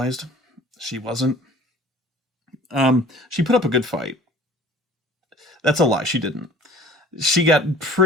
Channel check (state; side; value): normal; both; correlation 0.48